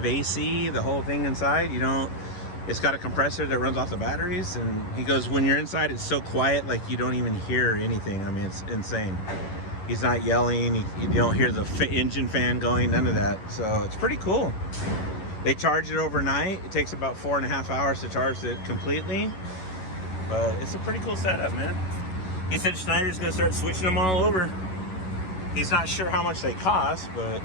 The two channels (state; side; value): late; right; 11 ms